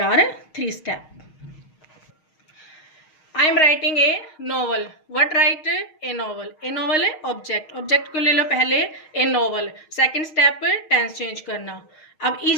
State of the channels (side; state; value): right; late; 6.4 ms